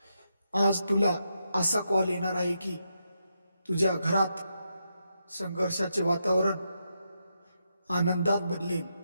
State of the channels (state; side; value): inverted; both; correlation -0.83